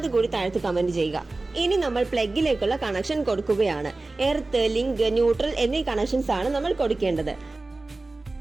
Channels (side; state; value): left; quieter; 3.2 dB